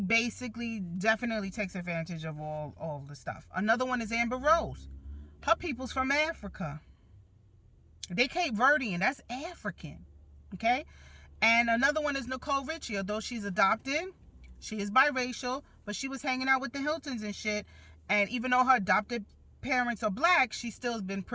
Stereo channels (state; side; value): identical; both; correlation 1.00